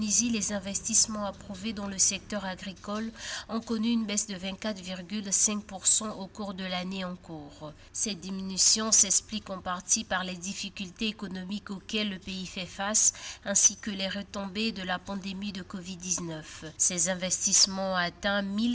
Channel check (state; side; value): identical; both; correlation 1.00